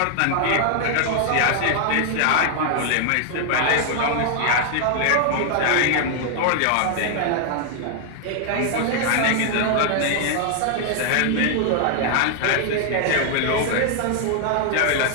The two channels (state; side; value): different; both; correlation 0.00